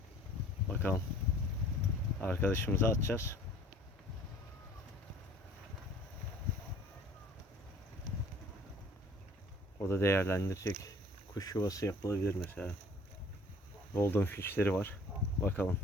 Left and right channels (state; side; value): normal; both; correlation 0.52